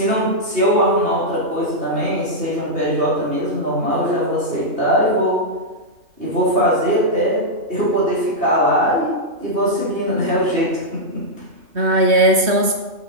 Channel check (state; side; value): late; left; 3.1 ms